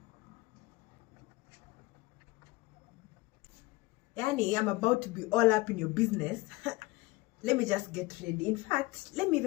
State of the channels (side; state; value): right; quieter; 21.3 dB